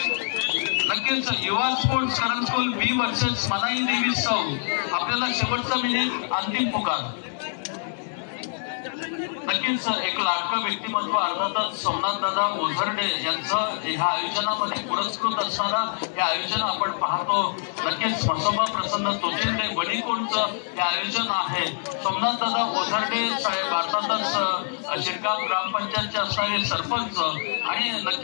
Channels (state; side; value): silent; right; 62 dB below the other